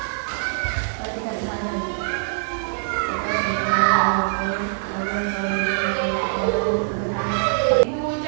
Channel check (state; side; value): silent; left; 63 dB below the other